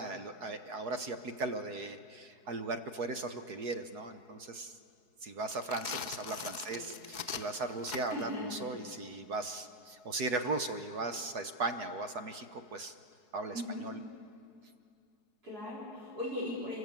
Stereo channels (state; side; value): late; left; 4.7 ms